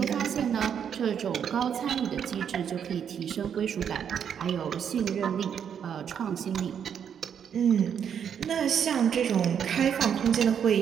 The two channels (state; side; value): quieter; left; 8.1 dB